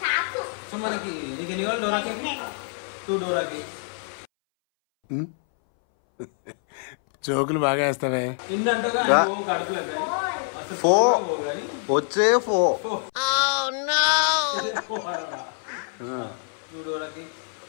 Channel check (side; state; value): right; silent; 62 dB below the other